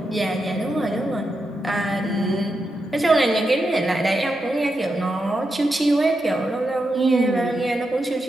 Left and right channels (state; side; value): normal; both; correlation 0.86